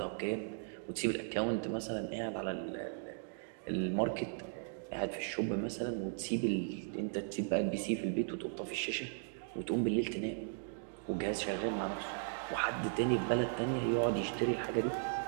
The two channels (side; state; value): left; silent; digital silence